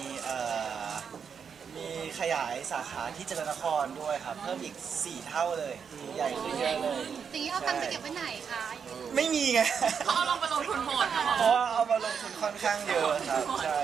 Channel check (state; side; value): quieter; left; 6.7 dB